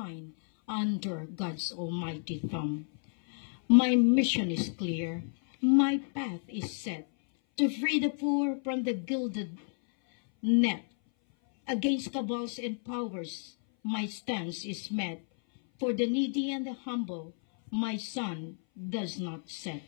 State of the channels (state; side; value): silent; right; 57 dB below the other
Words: under God's almighty thumb. My mission is clear, my path is set, to free the poor from the gilded net. Against cabals and powers, my stance is met. For the needy and the humble, my sun does not set.